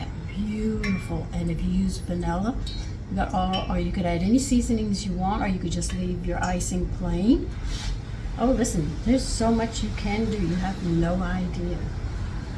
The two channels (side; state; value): both; identical; correlation 1.00